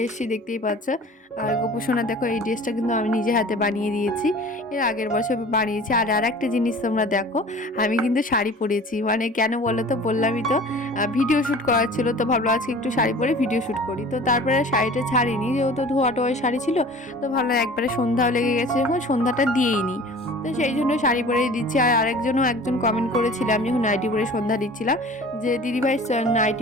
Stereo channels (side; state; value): both; normal; correlation 0.44